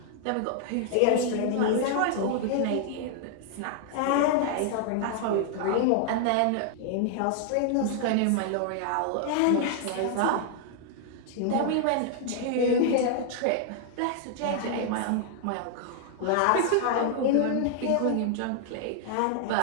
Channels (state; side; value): different; both; correlation 0.00